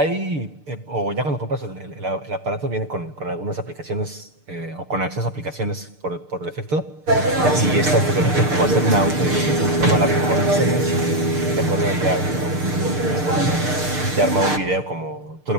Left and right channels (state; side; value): late; left; 6.7 ms